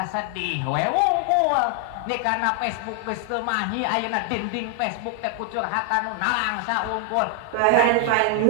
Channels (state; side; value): different; both; correlation 0.00